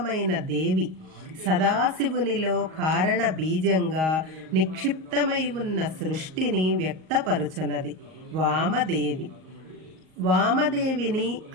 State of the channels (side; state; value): left; late; 38 ms